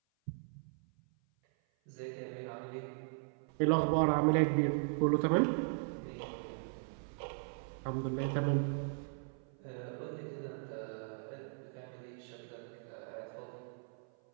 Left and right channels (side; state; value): left; silent; 53 dB below the other